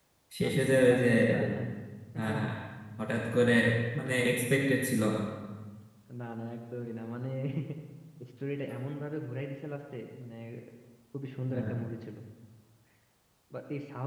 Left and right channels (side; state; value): both; identical; correlation 1.00